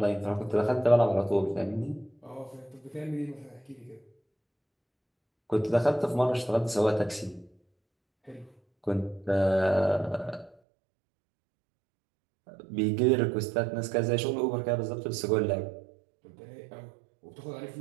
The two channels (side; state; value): left; drops out; at 10.6 s